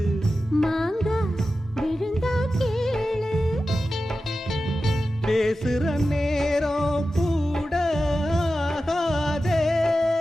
மாங்கா விழுந்தா கேளு. பேசுற நேரம் கூட ஆகாதே.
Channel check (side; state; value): both; normal; correlation 0.93